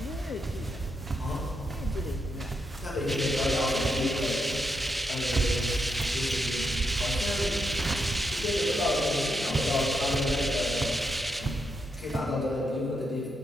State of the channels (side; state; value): both; normal; correlation 0.82